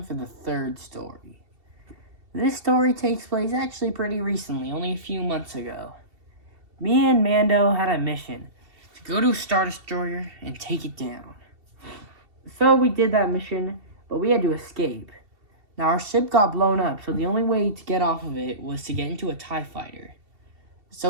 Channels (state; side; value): late; left; 2.7 ms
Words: for the third story. This story takes place actually pretty recently, only a few months ago. Me and Mando had a mission to go to a Star Destroyer and take it down. So we did that mission, but we had to escape. Now our ship got blown up, so the only way to get off of it was to get into a TIE fighter.